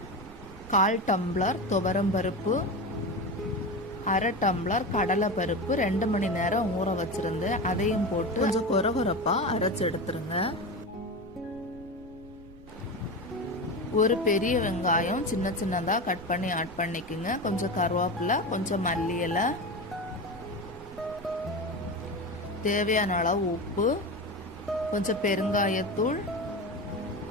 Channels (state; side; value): noise; right; rumble, 20 dB below the sound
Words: 1/4 டம்ளர் துவரம்பருப்பு, 1/2 டம்ளர் கடலை பருப்பு 2 மணி நேரம் ஊற வச்சிருந்து அதையும் போட்டு கொஞ்சம் கொரகொரப்பாக அரைச்சி எடுத்துருங்க. ஒரு பெரிய வெங்காயம் சின்ன சின்னதாக கட் பண்ணி ஆட் பண்ணிக்கோங்க. கொஞ்சம் கருவேப்பிலை, கொஞ்சம் மல்லி இலை, தேவையான அளவு உப்பு, கொஞ்சம் பெருங்காயத்தூள்,